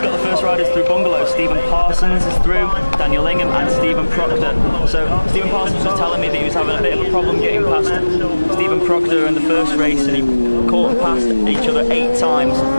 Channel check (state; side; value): inverted; both; correlation -1.00